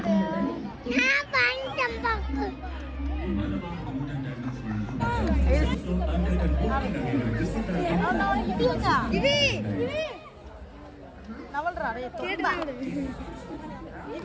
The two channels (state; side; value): identical; both; correlation 1.00